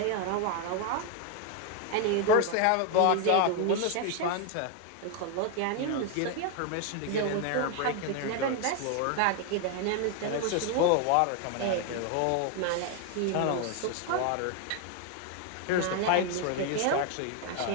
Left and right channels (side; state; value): both; different; correlation 0.01